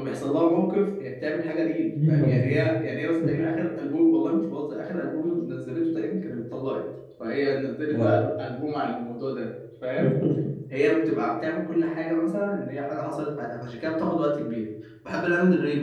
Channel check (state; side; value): identical; both; correlation 1.00